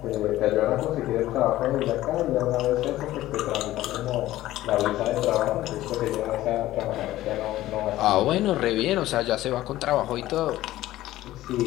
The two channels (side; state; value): right; quieter; 15.3 dB